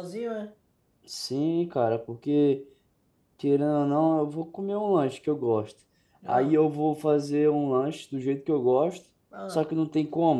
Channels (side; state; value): both; identical; correlation 1.00